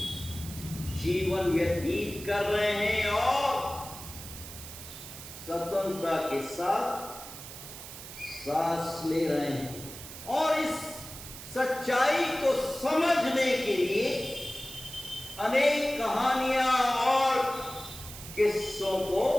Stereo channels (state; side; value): noise; right; hiss, 13 dB below the sound